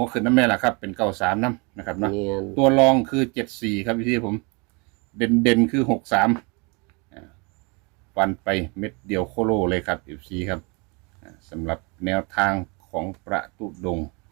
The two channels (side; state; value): left; quieter; 30.2 dB